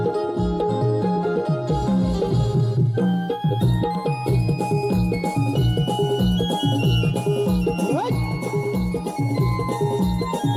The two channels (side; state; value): both; identical; correlation 1.00